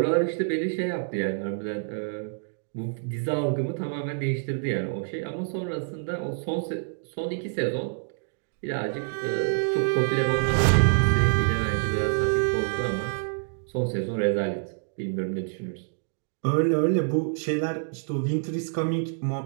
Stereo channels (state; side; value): silent; left; digital silence